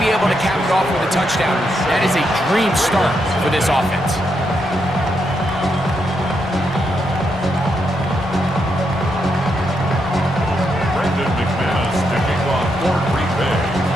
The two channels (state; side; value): normal; both; correlation 0.81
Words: able to cap it off with a touchdown, that is a dream start for this offense. Kicking off for Green Bay.